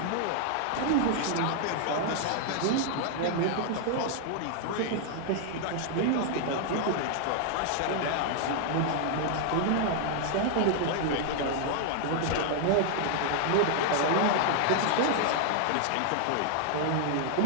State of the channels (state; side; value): different; both; correlation 0.00